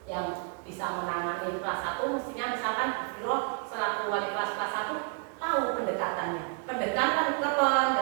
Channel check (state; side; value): quieter; left; 37.1 dB